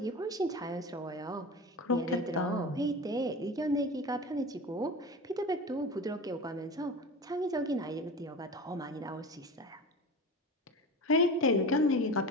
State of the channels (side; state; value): both; normal; correlation 0.31